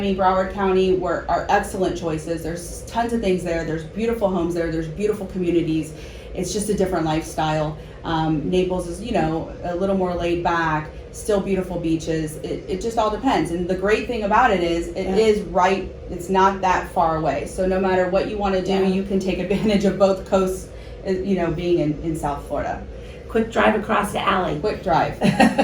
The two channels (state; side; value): identical; both; correlation 1.00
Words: Broward County are excellent choices. There's tons of things there. There's beautiful homes there. There's beautiful communities. It's just a different lifestyle. Naples is, a little more laid back, still beautiful beaches. It just all depends. And the great thing about it is is right. It's not that far away. So no matter what you want to do, Yeah. you can take advantage of both coasts, being in South Florida. Quick drive across the alley. Quick drive.